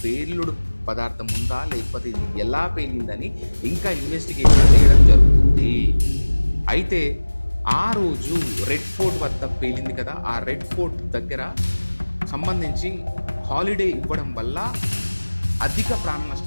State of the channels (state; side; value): inverted; both; correlation -1.00